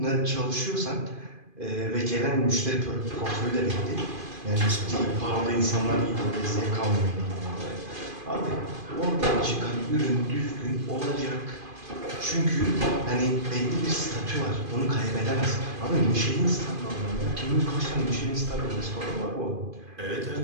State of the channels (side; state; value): left; late; 2.5 ms